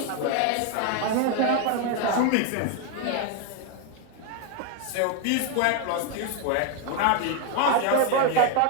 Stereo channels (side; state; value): both; different; correlation 0.01